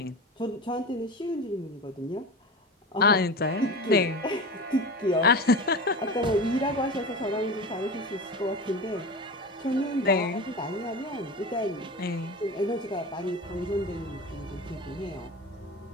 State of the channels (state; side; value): normal; both; correlation 0.28